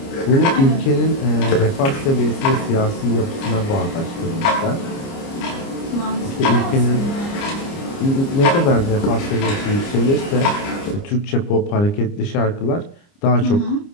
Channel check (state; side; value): late; right; 29 ms